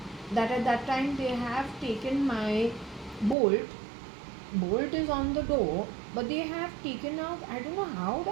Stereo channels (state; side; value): drops out; left; at 3.4 s